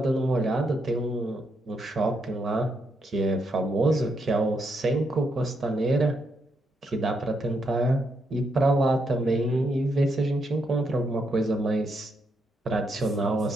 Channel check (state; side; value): normal; both; correlation 0.78